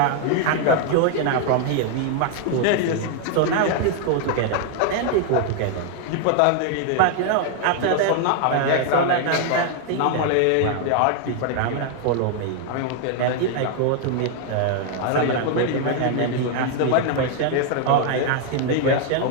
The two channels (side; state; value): both; different; correlation 0.00